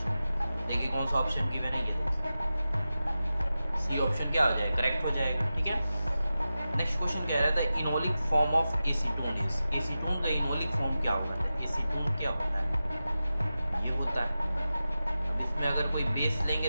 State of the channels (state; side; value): inverted; both; correlation -0.93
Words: देखिए कौन सा ऑप्शन गिवन है, ये देखिए सी ऑप्शन क्या हो जाएगा, करेक्ट हो जाएगा, ठीक है। नेक्स्ट क्वेश्चन कह रहा था enolic form of acetone is, acetone का इनोलिक फॉर्म क्या होगा? एसीटोन क्या होता है? ये होता है, इसमें अगर कोई बेस